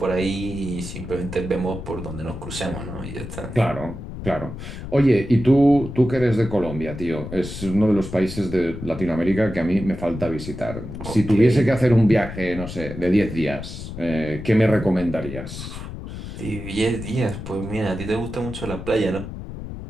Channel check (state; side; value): noise; left; rumble, 10 dB below the sound